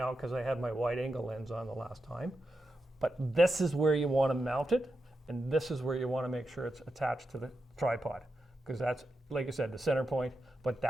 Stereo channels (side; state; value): both; normal; correlation 0.88